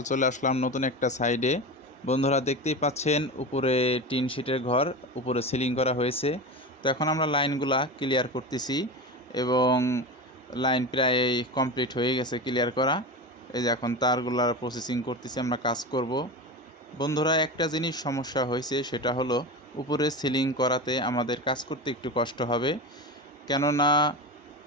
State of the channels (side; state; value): both; normal; correlation 0.25